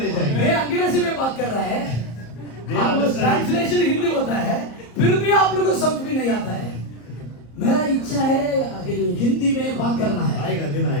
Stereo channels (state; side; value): late; right; 34 ms